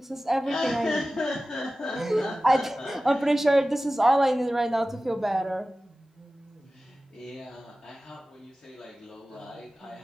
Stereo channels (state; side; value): normal; both; correlation 0.96